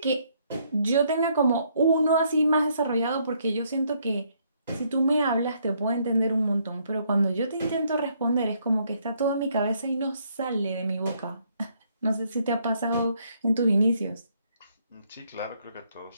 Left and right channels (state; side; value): inverted; both; correlation -0.70